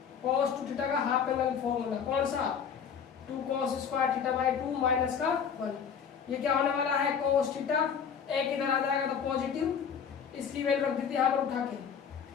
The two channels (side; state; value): right; quieter; 7.2 dB